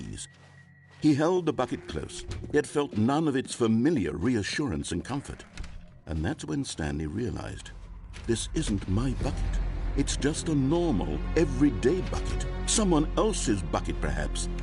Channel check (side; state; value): both; identical; correlation 1.00